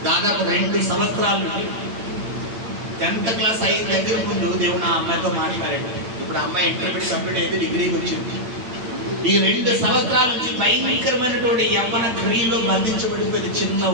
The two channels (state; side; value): late; left; 8.8 ms